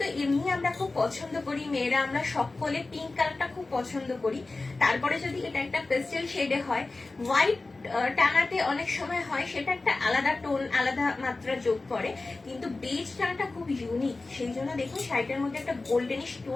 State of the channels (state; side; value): quieter; right; 3.4 dB